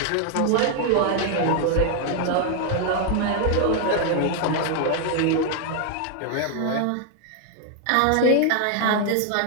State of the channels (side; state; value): both; different; correlation 0.00